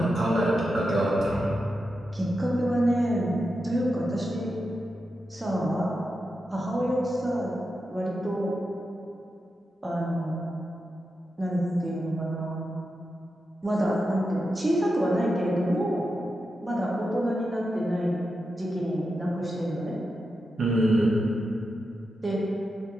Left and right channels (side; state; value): both; normal; correlation 0.89